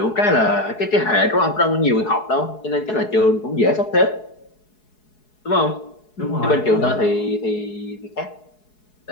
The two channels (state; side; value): late; right; 4.7 ms